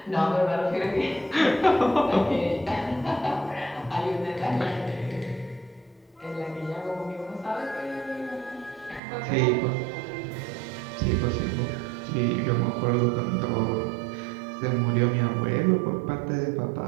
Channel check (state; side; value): drops out; left; at 9.0 s